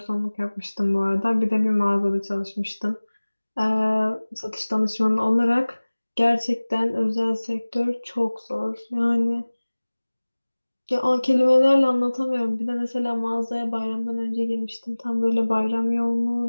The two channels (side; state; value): both; inverted; correlation -1.00